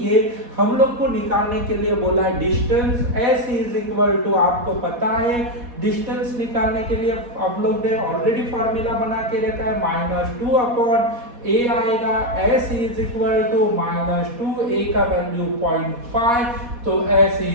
ये हम लोग को निकालने के लिए बोला है distance. s is equal to, आपको पता है डिस्टेंस निकालने के लिए हम लोग ने ऑलरेडी फॉर्मूला बना के रखा है, -2/a आएगा। s is equal to -2, a का वैल्यू 0.5, तो s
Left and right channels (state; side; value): late; left; 4.1 ms